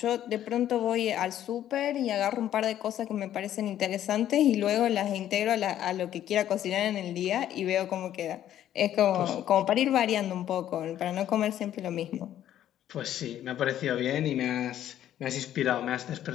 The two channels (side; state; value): right; quieter; 11.5 dB